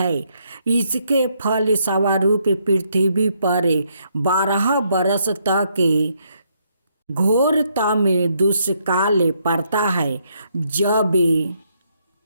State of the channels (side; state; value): both; inverted; correlation -0.74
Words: इसके फल स्वरूप पृथ्वी पर 12 बरस तक घोरतम दुष्काल पड़ता है। जब